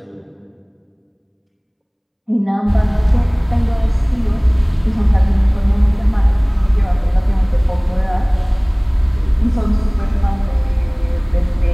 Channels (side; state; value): both; identical; correlation 1.00